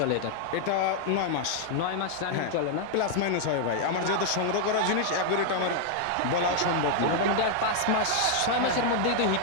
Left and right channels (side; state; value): both; different; correlation 0.00